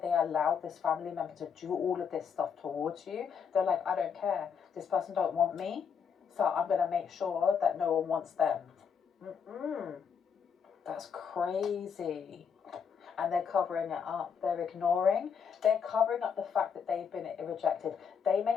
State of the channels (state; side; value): quieter; right; 6.8 dB